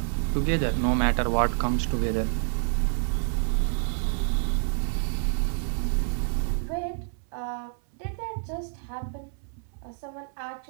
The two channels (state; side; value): silent; left; 59 dB below the other